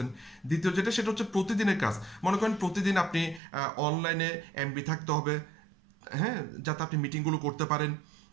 দ্বিতীয় যেটা সেটা হচ্ছে প্রতিদিনের কাজ। মনে করেন প্রতিদিন আপনি অনলাইনে এমবি থাকতে হবে, হ্যাঁ, যাতে আপনি মিটিংগুলো করতে পারেন।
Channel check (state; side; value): drops out; left; at 3.4 s